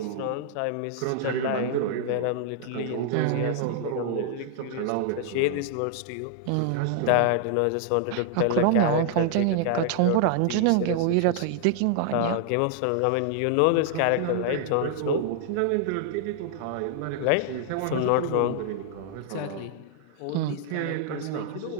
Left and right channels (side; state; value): both; different; correlation 0.00